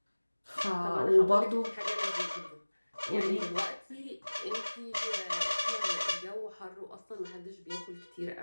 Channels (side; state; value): both; inverted; correlation -1.00